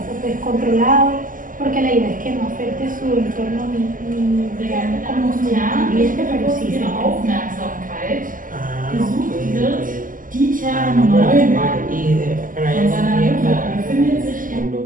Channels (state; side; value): late; left; 0.39 ms